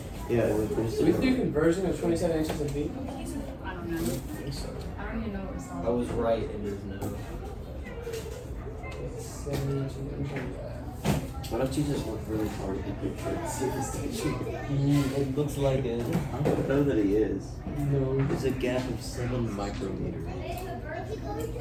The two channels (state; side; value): identical; both; correlation 1.00